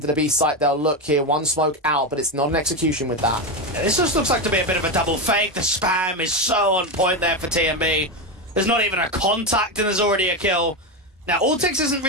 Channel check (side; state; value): both; normal; correlation 0.13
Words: the B site, they'll look here. One smoke out, but it's not an execution with that. Yeah, this just looks like to be a bit of a double fake. The spam is so on point there for TMB. There's not even a contact and there's already a kill. Now, Altex isn't